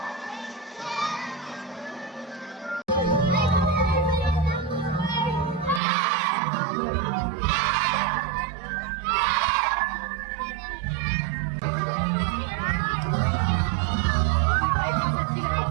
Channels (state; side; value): drops out; left; at 5.8 s